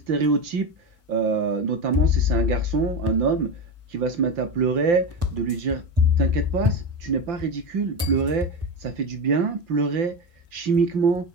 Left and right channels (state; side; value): late; left; 5.8 ms